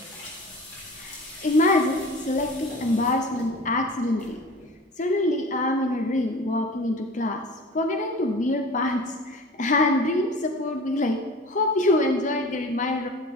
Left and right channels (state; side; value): normal; both; correlation 0.40